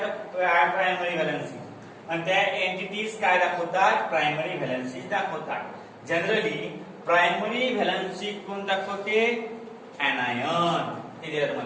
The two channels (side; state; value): both; identical; correlation 1.00